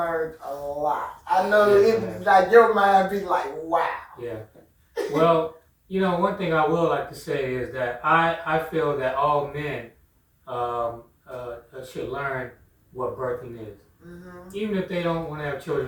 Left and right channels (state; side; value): identical; both; correlation 1.00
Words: a lot. I know Yes, it I have. like your mind be like, wow. Yeah. Well, you know, one thing I will like to say is that I feel that all men should learn what birthing is. Even if they don't want to have